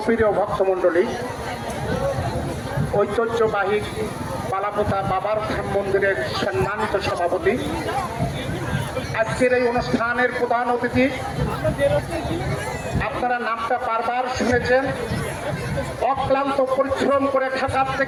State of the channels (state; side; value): identical; both; correlation 1.00